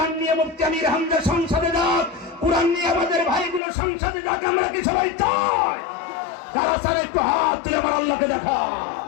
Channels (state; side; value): drops out; right; at 3.6 s